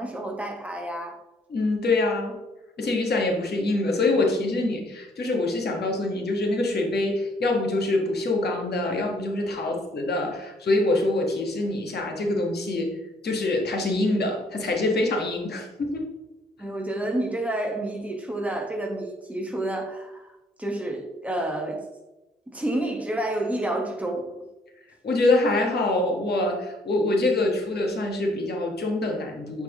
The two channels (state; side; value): normal; both; correlation 0.64